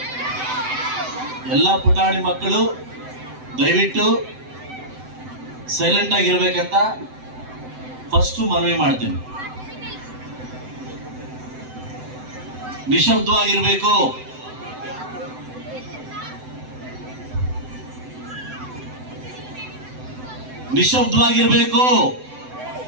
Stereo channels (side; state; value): left; late; 7.9 ms